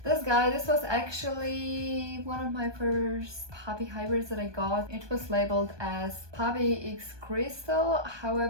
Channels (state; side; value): late; left; 1.2 ms